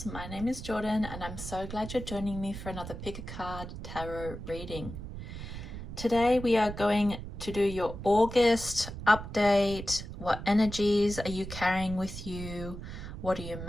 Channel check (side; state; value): right; noise; rumble, 9 dB below the sound